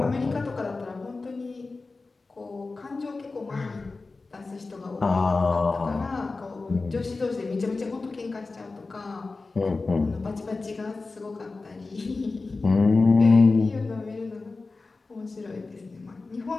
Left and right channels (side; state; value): right; quieter; 3.7 dB